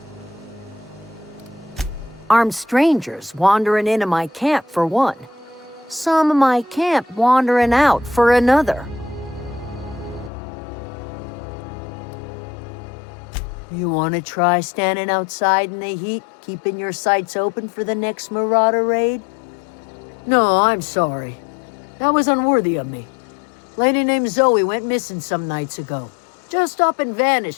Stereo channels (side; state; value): right; drops out; at 10.3 s